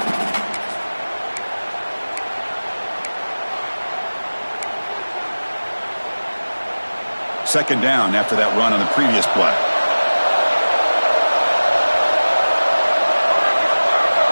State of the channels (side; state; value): both; inverted; correlation -1.00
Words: Second down after that run on the previous play.